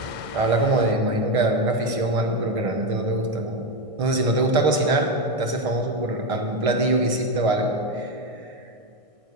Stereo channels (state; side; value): late; left; 1.6 ms